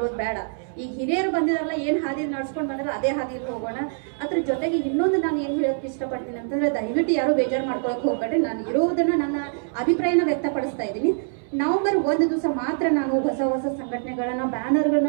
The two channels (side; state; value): left; silent; 62 dB below the other